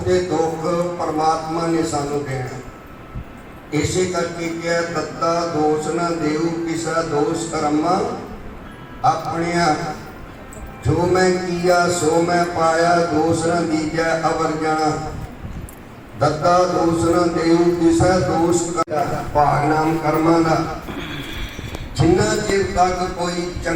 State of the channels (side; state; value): both; identical; correlation 1.00